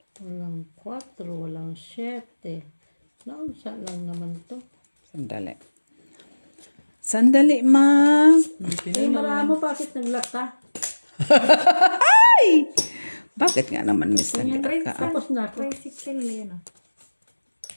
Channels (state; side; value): inverted; both; correlation -1.00